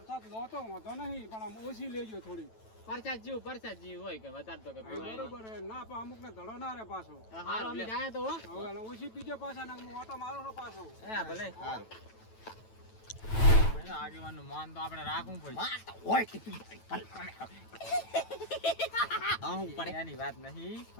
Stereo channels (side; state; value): right; late; 9.1 ms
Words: લો તો વાંધો નહીં પણ આમ ઓછી લેજો થોડી પરસાદ જેવું હોય કે વધારે તો કે પીવાય. બરોબર હે ના પણ અમુક ને ધડો ના રે પાછો હારું અમે જાય તો હો. હવે એને ઓછી પીજો પાછા ને હું ઓટો મારો છો પાછો હે ભલે. આગેવાનનું માન તો આપણે રાખવું પડે. હું પડે એની વાત નહીં